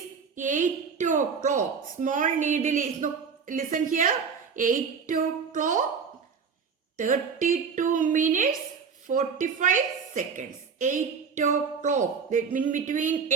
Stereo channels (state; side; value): quieter; left; 6.0 dB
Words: 8 o'clock. Small needle is, no, listen here, 8 o'clock, 32 minutes, 45 seconds. 8 o'clock. That means between